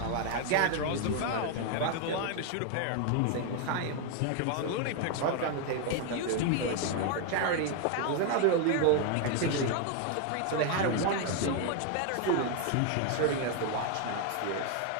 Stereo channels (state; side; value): different; both; correlation 0.01